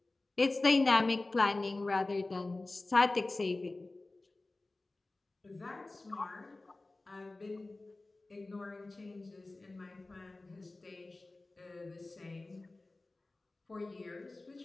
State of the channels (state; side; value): quieter; right; 3.1 dB